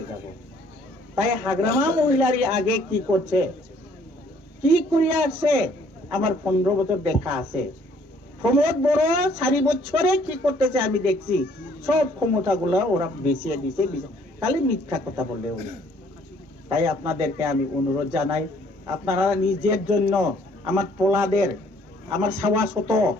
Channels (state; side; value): normal; both; correlation 0.61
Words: যাব তাই হাগ্রামা মহিলারই আগে কি করছে কি করিয়া আসছে আমার 15 বছর দেখা আছে প্রমোদ বড় 4 বছরে কি করতেছে আমি দেখছি সব ক্ষমতাগুলো ওরা বেশিয়ে দিছে খালি মিথ্যা কথা বললে উনি তাই আপনাদেরকে আমি অনুরোধ জানাই আপনারা নিজের জন্য আমার পোলাদের আমার সাওয়াশত